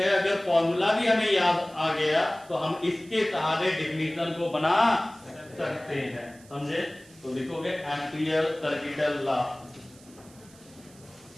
अगर फॉर्मूला भी हमें याद आ गया तो हम इसके सहारे डिफिनेशन को बना सकते हैं। समझे? तो लिखोगे एम्पियर सर्किटल लॉ,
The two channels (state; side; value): noise; right; hiss, 25 dB below the sound